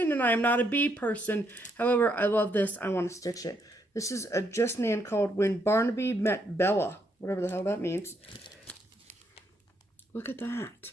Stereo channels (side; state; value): both; normal; correlation 0.75